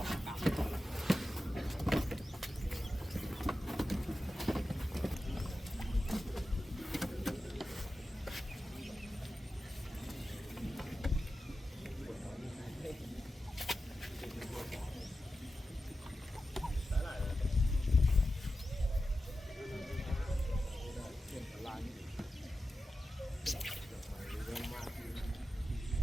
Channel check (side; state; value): both; normal; correlation 0.92